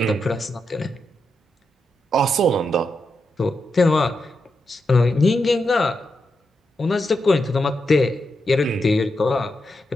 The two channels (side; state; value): both; normal; correlation 0.85